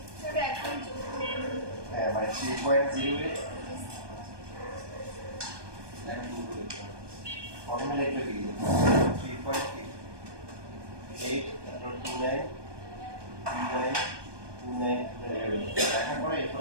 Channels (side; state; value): left; late; 1.2 ms